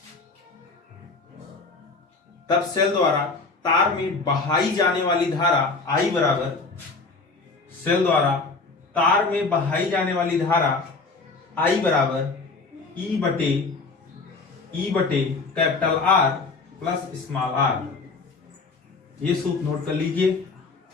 तब सेल द्वारा तार में बहाई जाने वाली धारा आई बराबर, सेल द्वारा तार में बहाई जाने वाली धारा आई बराबर ई बटे capital R plus small R. ये सूत्र नोट कर लीजिए।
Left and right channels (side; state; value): right; quieter; 4.0 dB